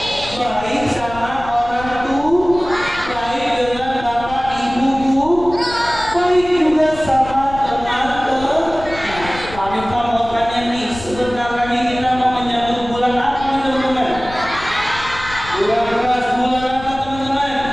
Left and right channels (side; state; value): left; noise; rumble, 14 dB below the sound